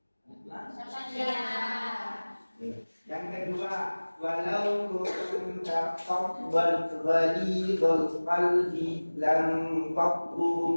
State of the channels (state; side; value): inverted; both; correlation -1.00